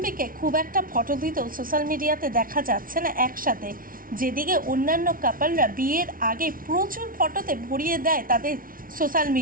খুব একটা ফটো দিতেও সোশ্যাল মিডিয়াতে দেখা যাচ্ছে না একসাথে, যেদিকে অন্যান্য কাপলরা বিয়ের আগে প্রচুর ফটোতে ভরিয়ে দেয় তাদের সোশ্যাল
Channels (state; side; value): late; left; 0.41 ms